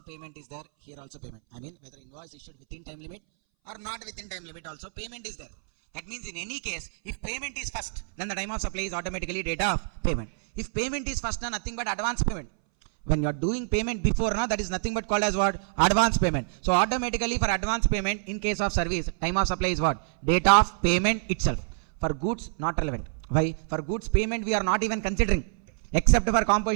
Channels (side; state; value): left; silent; 60 dB below the other